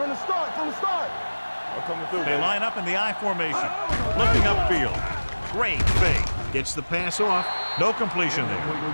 the start, I'm coming through. They line up in the I formation. Looking upfield. Great fake. Gets the pass off. No completion there.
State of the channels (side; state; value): both; inverted; correlation -1.00